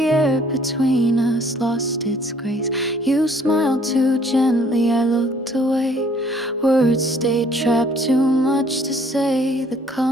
air between us lost its grace. You smiled too gently, I looked away. Words stayed trapped, too much to say. The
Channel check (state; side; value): normal; both; correlation 0.60